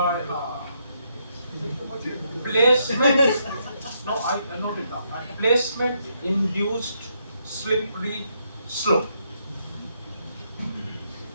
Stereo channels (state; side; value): inverted; both; correlation -0.76